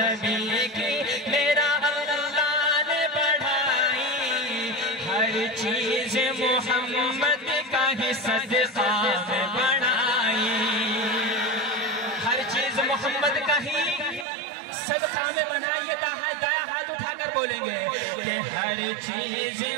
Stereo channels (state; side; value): drops out; left; at 14.2 s